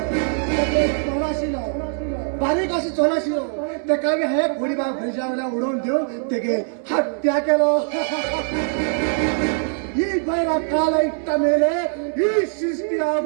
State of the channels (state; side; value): silent; left; 55 dB below the other